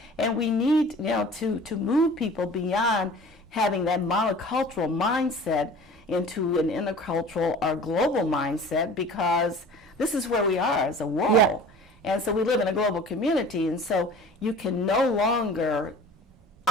and we need, you know, to move people beyond having that monocultural mindset into an intercultural or global mindset, because this is where we are as a world. Yeah. And so we live in a global community, and so you can no longer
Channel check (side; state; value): both; normal; correlation 0.43